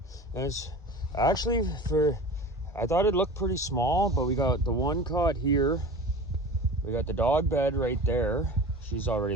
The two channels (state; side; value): normal; both; correlation 0.36